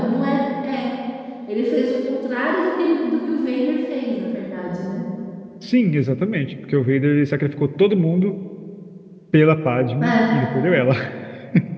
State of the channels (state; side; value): identical; both; correlation 1.00